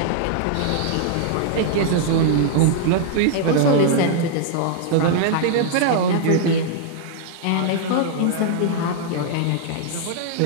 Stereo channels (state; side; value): different; both; correlation -0.01